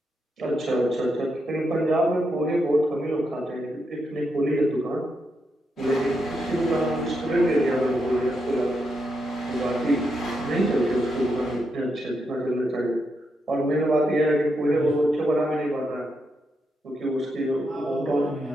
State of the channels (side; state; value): both; normal; correlation 0.83